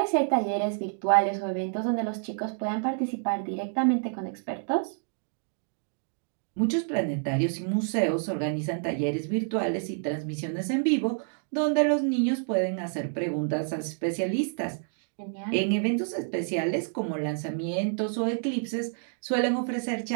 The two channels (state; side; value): silent; left; digital silence